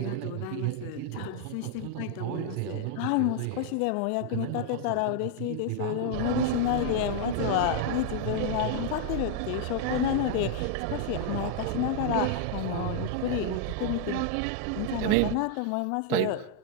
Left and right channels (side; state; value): both; different; correlation 0.00